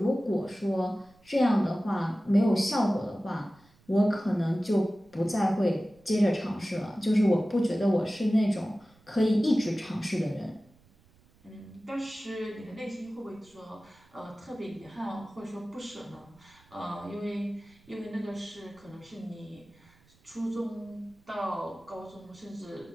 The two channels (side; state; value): right; noise; rumble, 30 dB below the sound